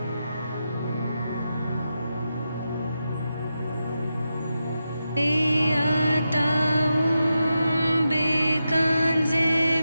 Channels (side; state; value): both; inverted; correlation -0.88